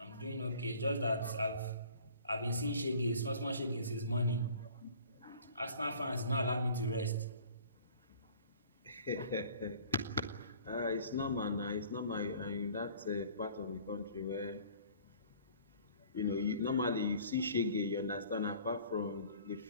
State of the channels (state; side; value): inverted; both; correlation -0.50